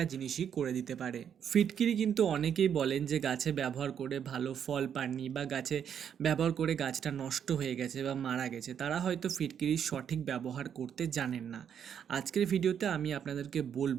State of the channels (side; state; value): left; quieter; 8.4 dB